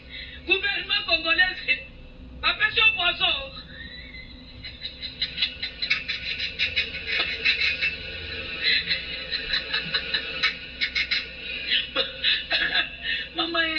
gouvernement congolais, papession poisson. Mama,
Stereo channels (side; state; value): both; identical; correlation 1.00